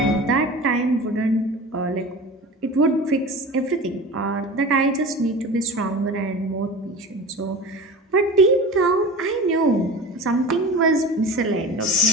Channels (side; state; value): both; normal; correlation 0.34